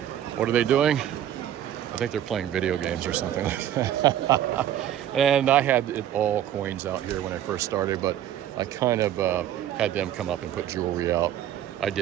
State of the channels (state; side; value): quieter; left; 11.3 dB